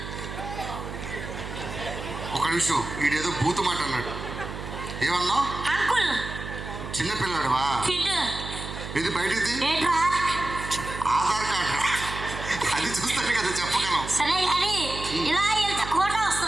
ఒక నిమిషం, వీడేదో బూతు మాట అన్నాడు. ఏమన్నావు? అంకుల్. చిన్నపిల్లాడువా? ఇది బయటిది ఆధార్ కార్డు, అది చూస్తే కదా చెప్పగలం. సరే కానీ ఇలా వెళ్తే కోట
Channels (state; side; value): noise; right; hum, 9 dB below the sound